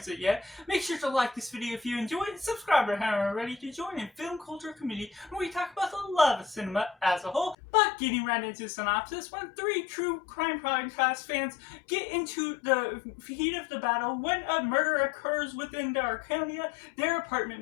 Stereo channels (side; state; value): right; drops out; at 7.6 s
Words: it yet. Make sure to like this video if you enjoyed it, subscribe if you haven't already to join in film culture community where we talk about the love of cinema as a whole. But getting right into the synopsis, when three true crime podcast fans get into the heat of the battle, when a murder occurs within the Arconia, their